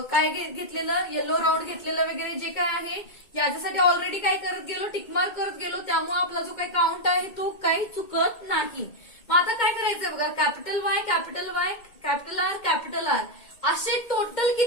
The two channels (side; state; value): right; late; 2.2 ms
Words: काय घेतलेलं, येलो राऊंड घेतलेलं वगैरे जे काय आहे याच्यासाठी ऑलरेडी काय करत गेलो, टिकमार्क करत गेलो, त्यामुळे आपला जो काही काउंट आहे तो काही चुकत नाही. मग आता काय करायचंय बघा, capital Y, capital Y, capital R, capital R असे टोटल